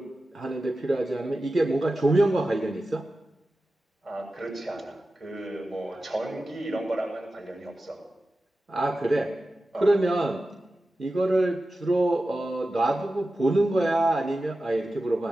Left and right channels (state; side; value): normal; both; correlation 0.93